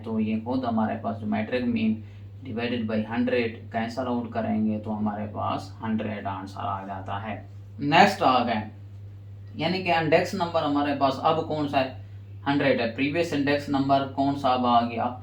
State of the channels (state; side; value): identical; both; correlation 1.00